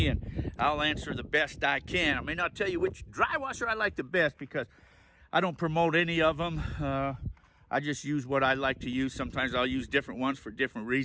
and I'll answer the best I can. I may not tell you which dry washer I like the best because I don't promote any of them. I just use what I like to use. Sometimes I'll use different ones for different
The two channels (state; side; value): identical; both; correlation 1.00